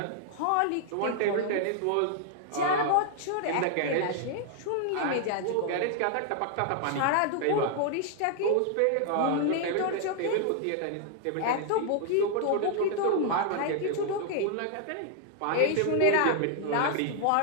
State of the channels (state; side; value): different; both; correlation 0.00